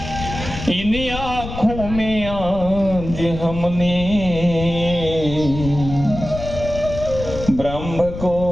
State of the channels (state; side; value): noise; left; rumble, 9 dB below the sound